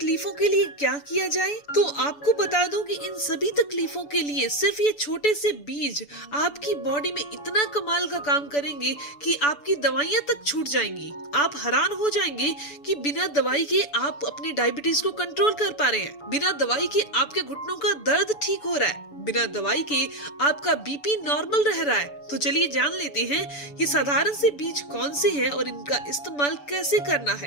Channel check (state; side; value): late; right; 6.9 ms